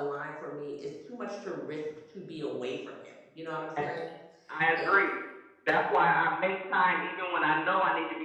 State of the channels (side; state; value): both; identical; correlation 1.00